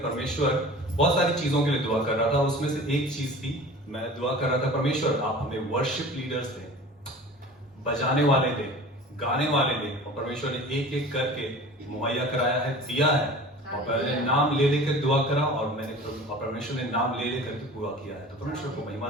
परमेश्वर, बहुत सारी चीजों के लिए दुआ कर रहा था, उसमें से एक चीज थी, मैं दुआ कर रहा था, परमेश्वर आप हमें वर्शिप लीडर्स दें, बजाने वाले दें, गाने वाले दें। और परमेश्वर ने एक एक करके मुहैया कराया है, दिया है। और मैंने नाम ले लेकर दुआ करा और परमेश्वर ने नाम ले लेकर के पूरा किया है। तो परमेश्वर को महिमा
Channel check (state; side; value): normal; both; correlation 0.40